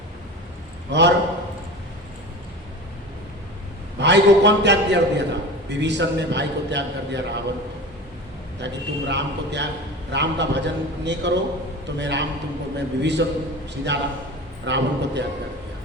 और भाई को कौन त्याग कर दिया था? विभीषण ने भाई को त्याग कर दिया, रावण को, ताकि तुम राम को राम का भजन नहीं करो तो मैं विभीषण सीधा रावण को त्याग कर दिया।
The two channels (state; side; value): normal; both; correlation 0.33